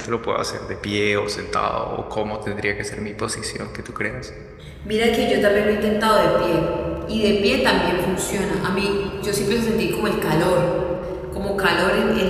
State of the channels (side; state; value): both; identical; correlation 1.00